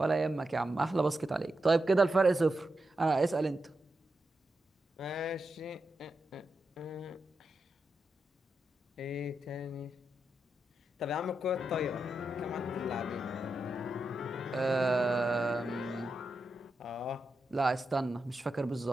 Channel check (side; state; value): both; normal; correlation 0.87